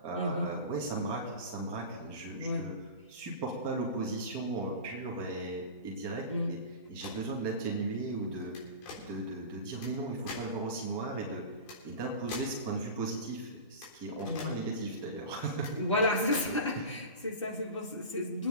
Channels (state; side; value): inverted; both; correlation -0.30